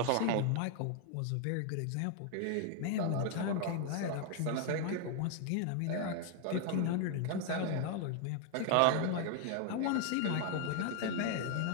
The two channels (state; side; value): different; both; correlation 0.00